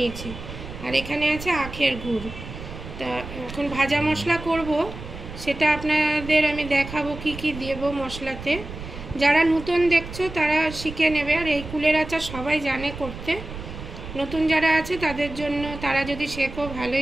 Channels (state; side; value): noise; right; rumble, 11 dB below the sound